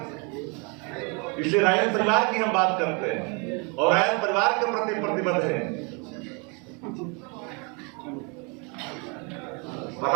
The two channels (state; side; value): quieter; left; 32.7 dB